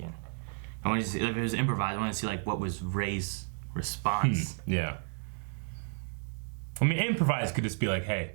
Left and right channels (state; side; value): silent; left; 56 dB below the other